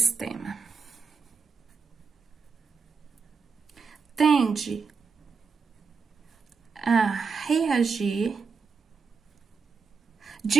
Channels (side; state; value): left; quieter; 5.2 dB